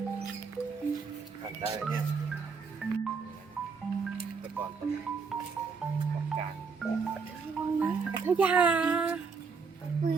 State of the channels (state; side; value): quieter; left; 5.2 dB